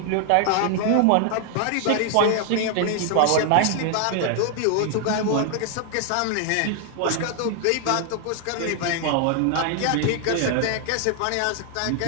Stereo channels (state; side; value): different; both; correlation 0.00